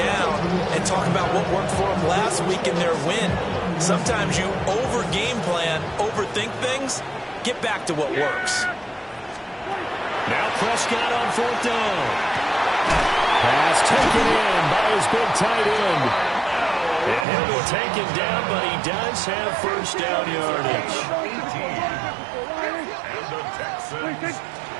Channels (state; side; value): drops out; left; at 17.2 s